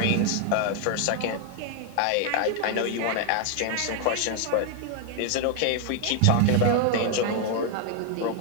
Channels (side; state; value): both; different; correlation 0.00